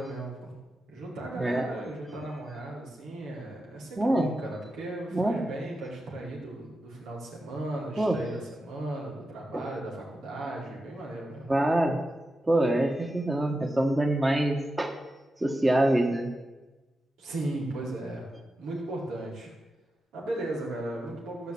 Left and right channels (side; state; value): both; normal; correlation 0.90